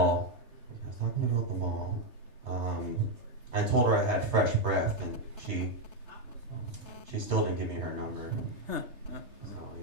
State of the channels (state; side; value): late; left; 3.3 ms